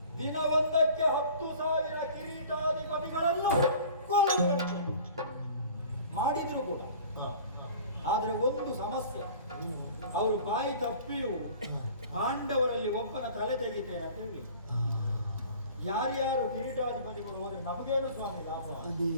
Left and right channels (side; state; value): both; inverted; correlation -0.45